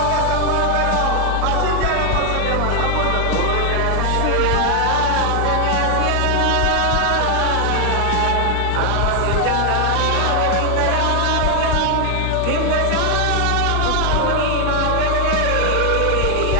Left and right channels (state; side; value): different; both; correlation 0.00